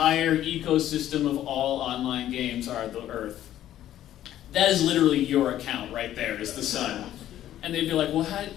ecosystem of all online games are the Earth. That is literally your account right there, is the sun. And they'd be like, well,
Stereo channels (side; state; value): right; quieter; 12.3 dB